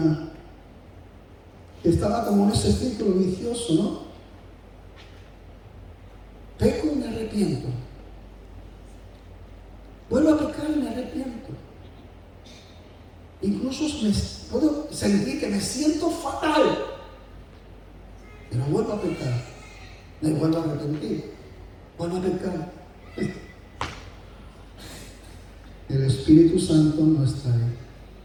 que estaba como en ese círculo vicioso, ¿no? Peco y me arrepiento. Vuelvo a pecar y me arrepiento. Incluso puedo sentir que me siento fatal, pero vuelvo a pecar. Me vuelvo a arrepentir. Vuelvo a pecar. El Espíritu Santo no está ahí.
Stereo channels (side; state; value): both; identical; correlation 1.00